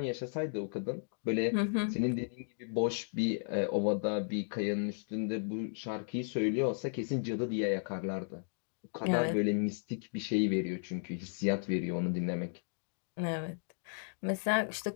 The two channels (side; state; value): right; silent; digital silence